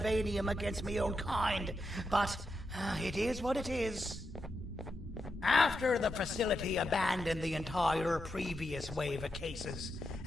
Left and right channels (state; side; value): normal; both; correlation 0.85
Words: against my own kind, but it is what it is. After the facility abandoned the entire previous wave of cases